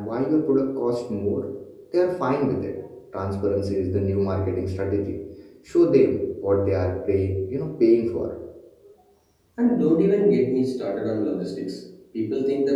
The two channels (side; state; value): both; identical; correlation 1.00